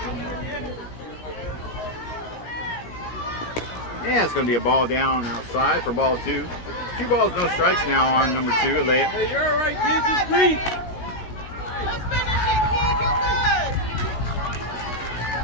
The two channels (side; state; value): right; late; 16 ms